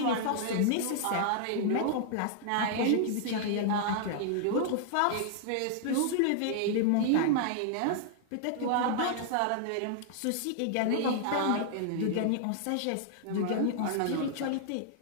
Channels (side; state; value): both; different; correlation -0.01